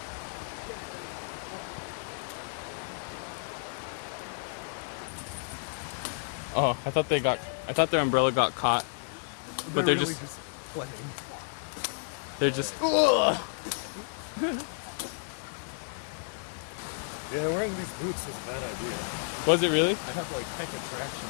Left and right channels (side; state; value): right; silent; digital silence